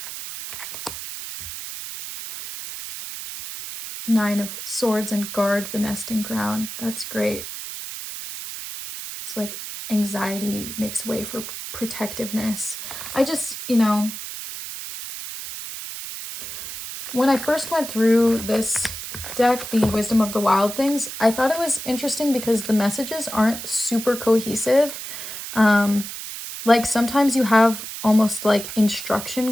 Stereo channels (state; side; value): noise; right; hiss, 9 dB below the sound